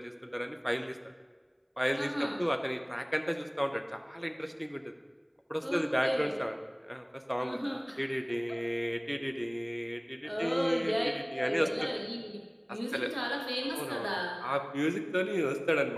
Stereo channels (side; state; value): both; identical; correlation 1.00